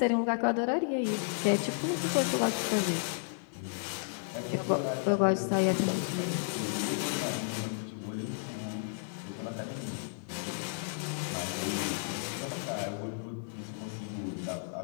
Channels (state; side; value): silent; right; digital silence